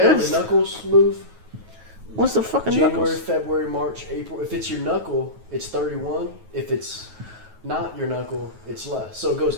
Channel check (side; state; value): left; late; 9.3 ms